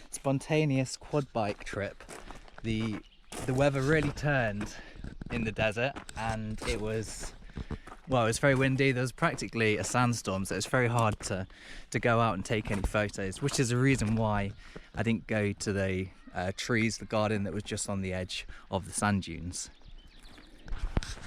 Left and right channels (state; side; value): identical; both; correlation 1.00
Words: spontaneous quad bike trip, the weather really turned in the desert, and it was very windy. There was practically a sandstorm, so it's very hard to go out and take any photos, which is the reason why I didn't go to the trees, the garden that was just on the edge of the sand dunes.